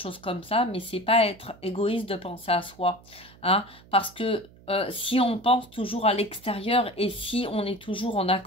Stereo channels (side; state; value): right; noise; hum, 24 dB below the sound